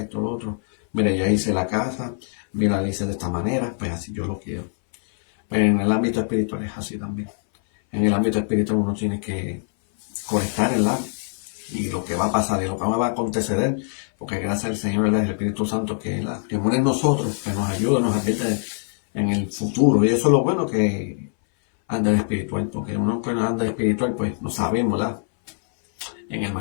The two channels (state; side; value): silent; right; 60 dB below the other